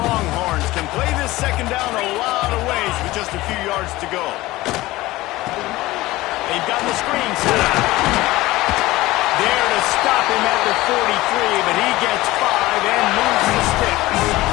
can play this second down a lot of ways with just a few yards to go. They've got the screen set up. There to stop him at the 43, but he gets 5 and moves the sticks.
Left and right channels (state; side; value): quieter; right; 18.5 dB